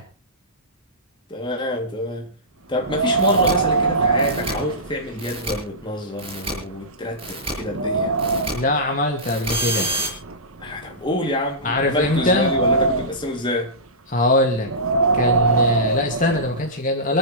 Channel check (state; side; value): normal; both; correlation -0.18